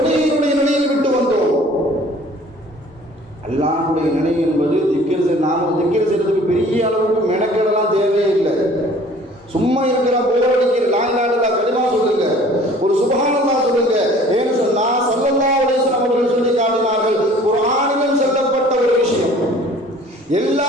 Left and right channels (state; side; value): normal; both; correlation 0.51